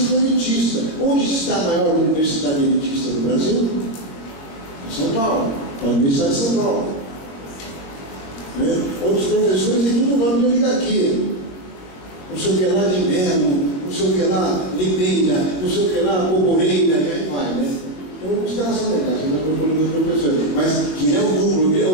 elitista. Onde está a maior universidade elitista do Brasil? Em São Paulo, a Universidade de São Paulo. Né? Outros professores têm tudo nome de oligarquia. Não sei o que lá de Melo, não sei o que lá Limeira, não sei o que lá Boboreira, e aí vai, né? Então, os caras são legais, eu estou falando dos professores, mas que é o núcleo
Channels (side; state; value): right; late; 22 ms